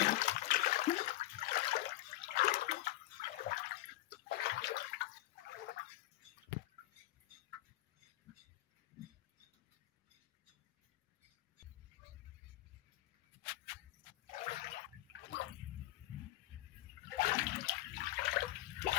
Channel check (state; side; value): quieter; right; 16.5 dB